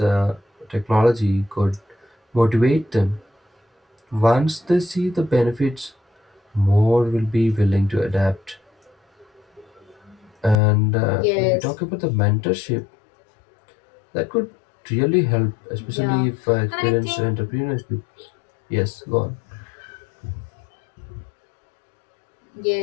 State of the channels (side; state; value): right; drops out; at 10.6 s